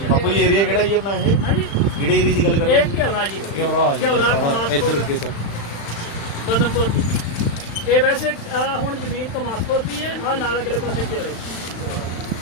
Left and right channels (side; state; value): right; late; 35 ms